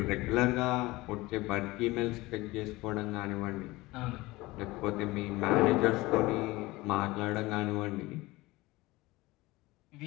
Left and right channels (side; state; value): right; quieter; 20.5 dB